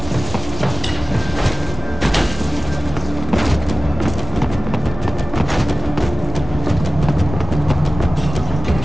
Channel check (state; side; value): normal; both; correlation 0.96